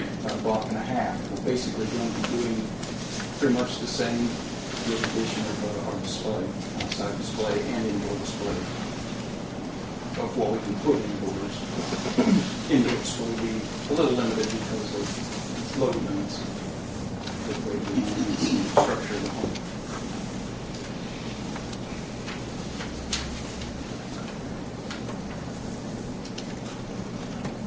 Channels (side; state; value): both; identical; correlation 1.00